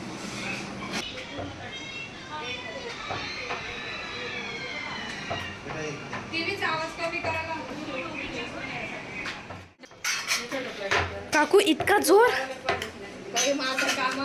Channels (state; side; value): identical; both; correlation 1.00